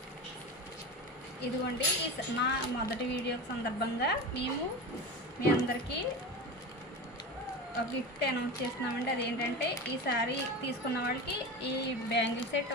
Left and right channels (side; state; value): both; normal; correlation 0.27